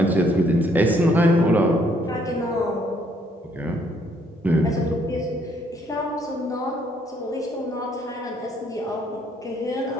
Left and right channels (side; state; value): both; normal; correlation 0.67